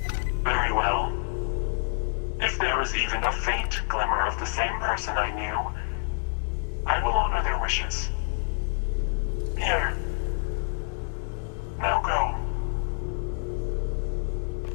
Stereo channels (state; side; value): silent; right; digital silence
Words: Very well. If there is even a faint glimmer of the same person I knew, I will honor their wishes. Here. Now go.